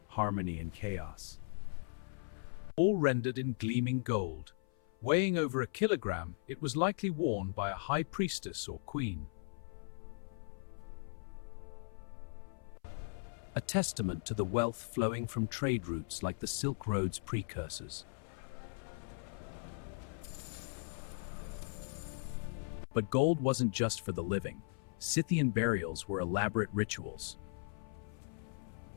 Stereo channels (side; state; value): right; silent; 52 dB below the other